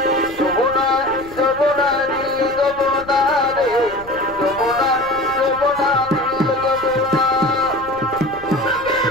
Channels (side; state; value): left; noise; rumble, 20 dB below the sound